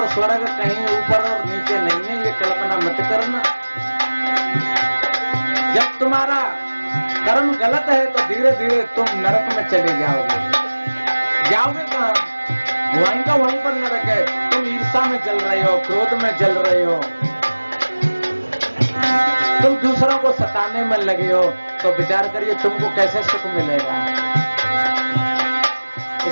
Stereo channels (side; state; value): both; inverted; correlation -1.00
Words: स्वर्ग कहीं ऊपर और नीचे नहीं है, ये कल्पना मत करना। जब तुम्हारा कर्म गलत है तो धीरे धीरे तुम नरक में चले जाओगे। जाओगे कहाँ? वहीं का वहीं पर नरक है। तुम ईर्ष्या में जल रहे हो, क्रोध में जल रहे हो, तुम दूसरों को सताने में लगे हो, तो विचार करिए तुमको कैसे सुख मिलेगा।